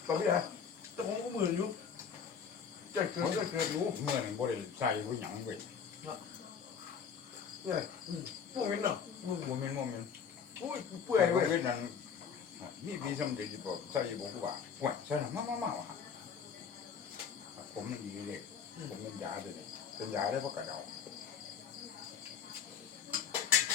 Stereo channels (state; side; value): quieter; right; 6.9 dB